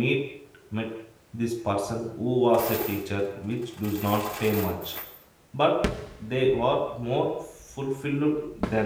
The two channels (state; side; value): identical; both; correlation 1.00